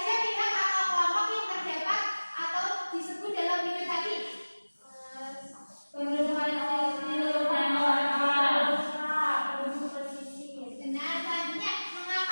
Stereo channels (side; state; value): both; inverted; correlation -1.00